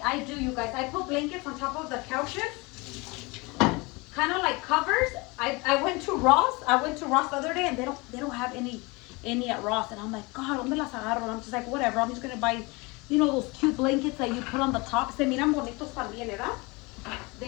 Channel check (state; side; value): quieter; right; 25.9 dB